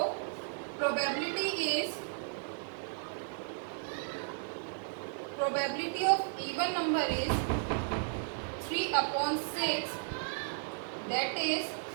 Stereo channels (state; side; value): silent; left; 55 dB below the other